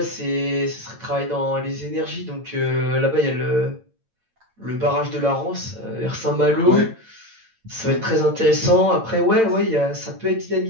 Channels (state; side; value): late; left; 8.9 ms